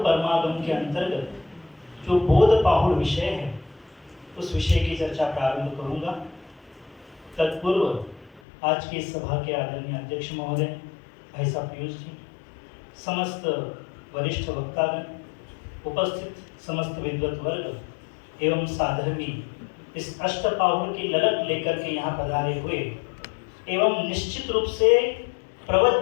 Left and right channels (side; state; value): right; drops out; at 8.4 s